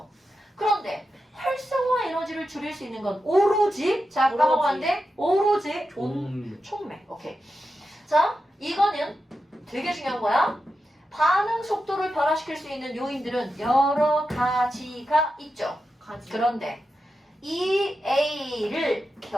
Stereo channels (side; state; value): both; normal; correlation 0.89